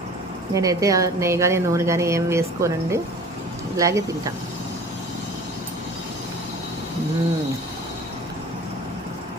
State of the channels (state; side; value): normal; both; correlation 0.43